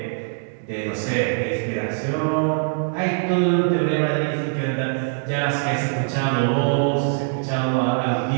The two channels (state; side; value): silent; left; digital silence